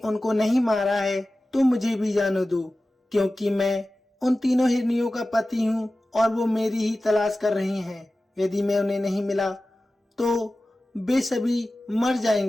नहीं मारा है तो मुझे भी जाने दो, क्योंकि मैं उन तीनों हिरनियों का पति हूँ और वो मेरी ही तलाश कर रही हैं। यदि मैं उन्हें नहीं मिला तो वे सभी मर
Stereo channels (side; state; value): both; normal; correlation 0.95